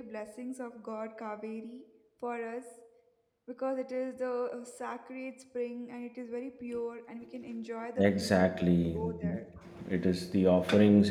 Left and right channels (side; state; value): both; identical; correlation 1.00